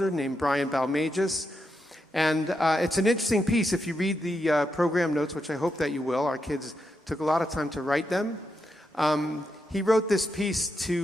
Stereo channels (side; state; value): both; normal; correlation 0.84